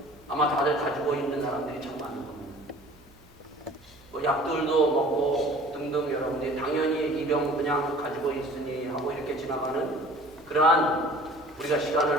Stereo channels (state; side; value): noise; right; hum, 26 dB below the sound